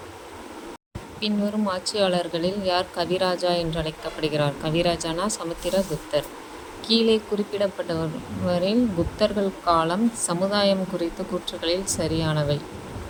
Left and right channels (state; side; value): identical; both; correlation 1.00